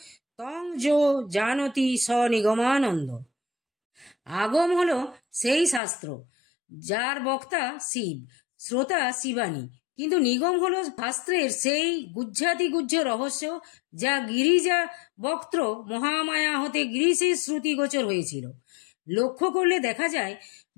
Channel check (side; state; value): right; drops out; at 5.8 s